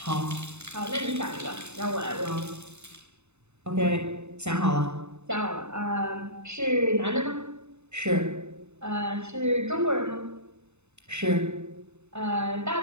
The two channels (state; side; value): late; left; 0.82 ms